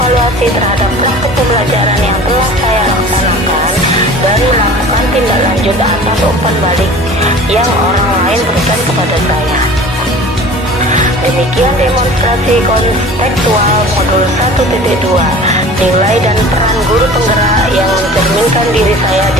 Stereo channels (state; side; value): normal; both; correlation 0.42